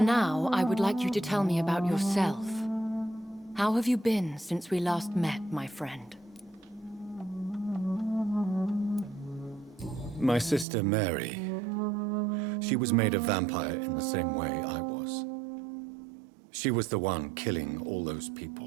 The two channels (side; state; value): left; drops out; at 10.7 s